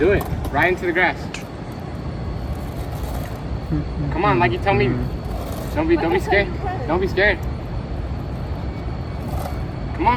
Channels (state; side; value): identical; both; correlation 1.00